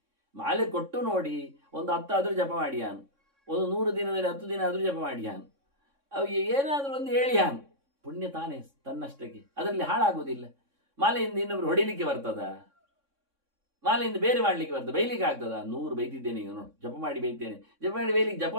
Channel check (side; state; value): left; late; 3.6 ms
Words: ಮಾಲೆ ಕೊಟ್ಟು ನೋಡಿ, ಒಂದು 10 ಆದರೂ ಜಪ ಮಾಡಿಯಾನು, ಒಂದು 100 ದಿನದಲ್ಲಿ 10 ದಿನ ಆದರೂ ಜಪ ಮಾಡಿಯಾನು, ಅವು ಏನಾದರೂ ಒಂದು ಹೇಳಿಯಾನು, ಪುಣ್ಯ ತಾನೇ ತನ್ನಷ್ಟಕ್ಕೆ, ಅದರಲ್ಲಿ ಹಾಳಾಗುವುದಿಲ್ಲ. ಮಾಲೆಯಿಂದ ಇನ್ನೊಬ್ರು ಹೊಡಿಲಿಕ್ಕೆ ಬರ್ತದ? ಮಾಲೆಯಿಂದ ಬೇರೆ ಮಾಡಲಿಕ್ಕೆ ಬರ್ತದೆ? ಬೈಲಿಕ್ಕೆ ಆಗ್ತದ? 100 ಬೈತಿದ್ದೇನೆ ಈಗ ನೋಡಿ, ಜಪ ಮಾಡಿ ಬೈತೇನೆ, ಜಪ ಮಾಡಿ ಬೈಲಿಕ್ಕೆ, ಜಪ